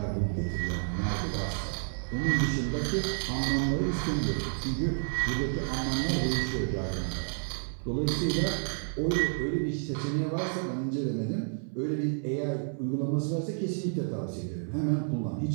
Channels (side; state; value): left; silent; 57 dB below the other